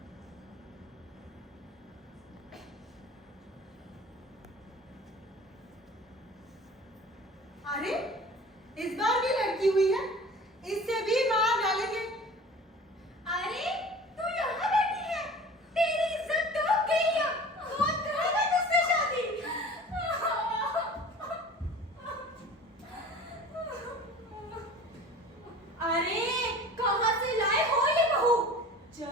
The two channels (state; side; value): normal; both; correlation 0.42